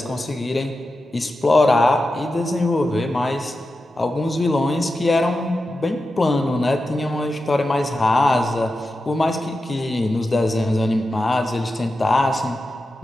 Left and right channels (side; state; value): both; normal; correlation 0.91